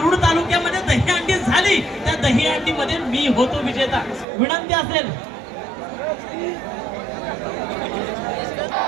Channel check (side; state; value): left; drops out; at 4.2 s